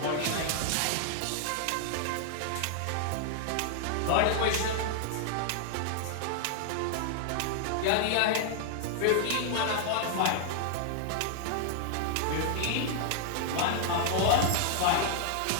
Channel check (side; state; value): both; different; correlation -0.01